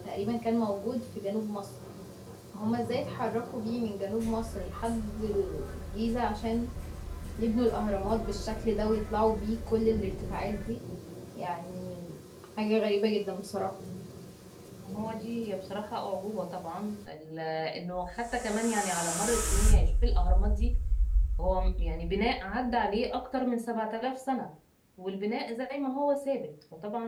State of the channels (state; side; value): identical; both; correlation 1.00